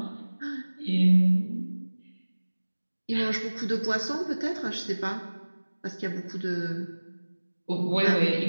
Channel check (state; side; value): inverted; both; correlation -1.00